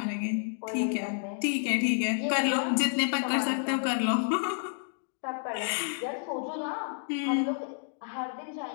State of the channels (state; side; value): silent; right; digital silence